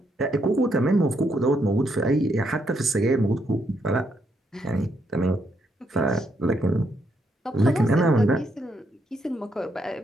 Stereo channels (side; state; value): both; normal; correlation 0.77